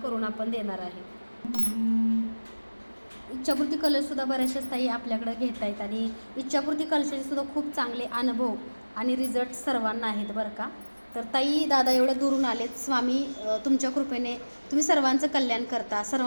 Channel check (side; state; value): both; inverted; correlation -1.00